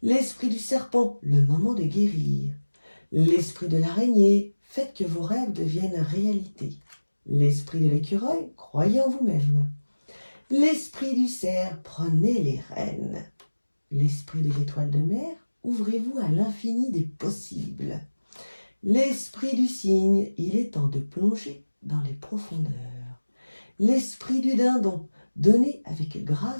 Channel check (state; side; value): inverted; both; correlation -1.00